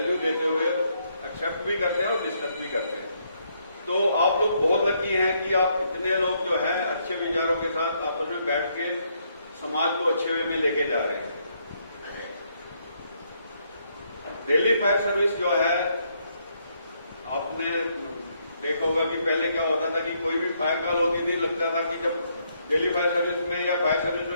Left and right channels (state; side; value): inverted; both; correlation -0.74